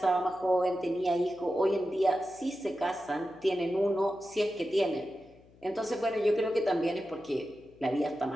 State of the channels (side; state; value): left; noise; hum, 27 dB below the sound